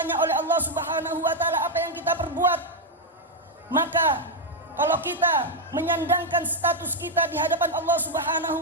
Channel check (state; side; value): normal; both; correlation 0.01